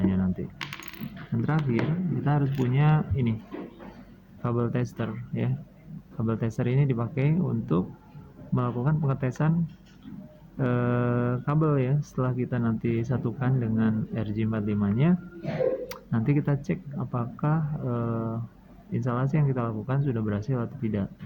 nya nanti. Dan terakhir kita harus punya ini kabel tester ya. Kabel tester ini dipakai untuk melakukan pengetesan kabel ya. Setelah kita nanti satukan dengan RJ45 nya, nanti kita cek apakah instalasi yang kita lakukan sudah berhasil atau tidak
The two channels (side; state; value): both; identical; correlation 1.00